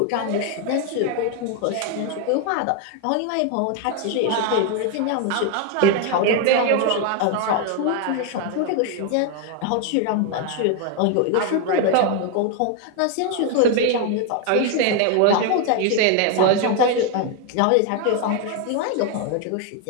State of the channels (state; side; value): different; both; correlation 0.01